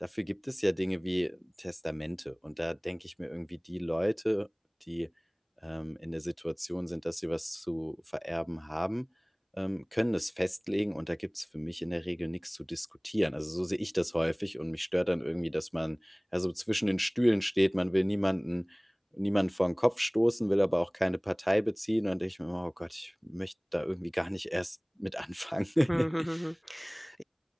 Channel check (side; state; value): both; identical; correlation 1.00